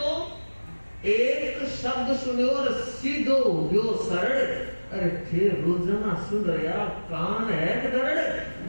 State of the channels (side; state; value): both; inverted; correlation -1.00